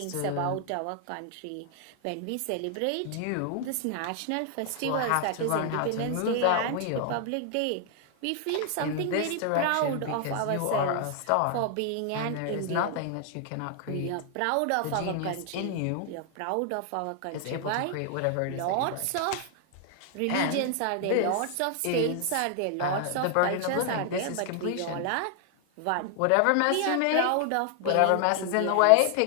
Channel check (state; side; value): different; both; correlation 0.00